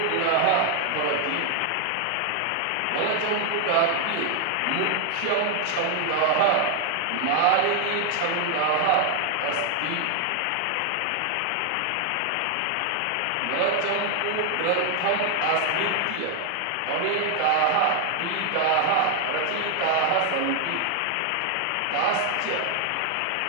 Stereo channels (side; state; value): both; different; correlation 0.00